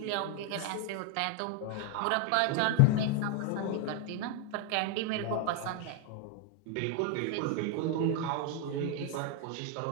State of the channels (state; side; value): different; both; correlation 0.01